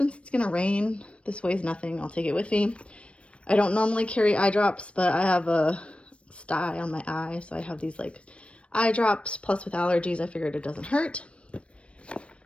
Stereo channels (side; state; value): right; late; 0.061 ms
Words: it's going to rain, this weighs nothing, I'll take it with me. I don't normally carry eye drops, but I have a sty on my eye, so I have these like eye drops, plus with allergies, I figured it doesn't hurt.